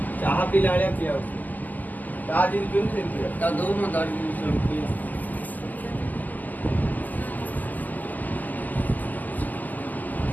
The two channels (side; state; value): right; late; 0.083 ms